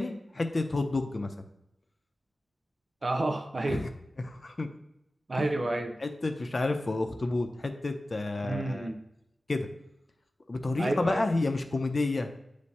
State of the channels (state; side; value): normal; both; correlation 0.95